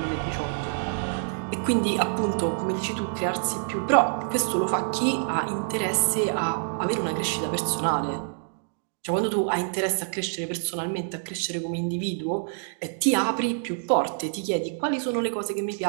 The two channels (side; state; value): left; silent; digital silence